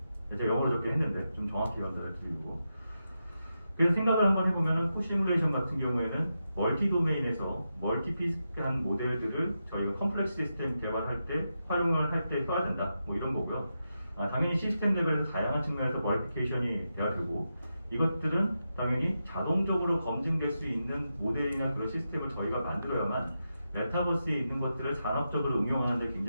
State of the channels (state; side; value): inverted; both; correlation -0.87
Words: 제가 영어로 적게 했는데 좀 정확히 연달아 드리고. 그래서 생각을 한번 해보면은 코시뮬레이션 같은 경우에는 멀티 도메인에서 멀티피스한 모델들을 저희가 컴플렉스 시스템 개발할 때 활용을 할 때 써야 된다. 뭐 이런 거고요. 당연히 시스템 레벨에서 다양한 측면에서 버리피케이션이 돼야 되고 이것들은 당연히 자동적으로 검증될 수 있는 모델이나 그런 시스템을 저희가 만들어야만 메타버스에 있는 것들을 산업적으로 응용하는 데